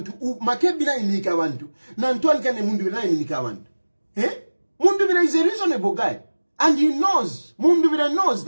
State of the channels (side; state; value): both; inverted; correlation -1.00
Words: Makebi na minika abantu. Na Ntwanikani Mundubire na minika abantu. Mundubire is a reasonable guy. And he knows, Mundubire knows